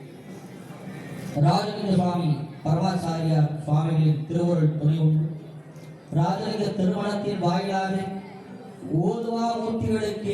ராஜலிங்க சுவாமி பரமாச்சாரியார் சுவாமிகளின் திருவருள் துணை உண்டு ராஜலிங்க திருமணத்தின் வாயிலாக ஓதுவா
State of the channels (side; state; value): both; identical; correlation 1.00